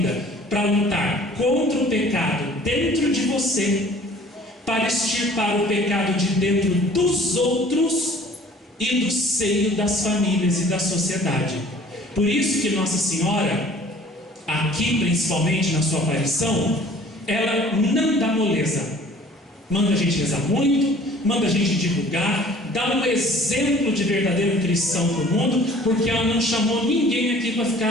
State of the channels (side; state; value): both; normal; correlation 0.51